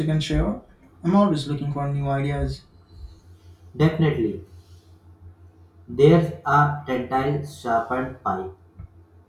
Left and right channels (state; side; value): identical; both; correlation 1.00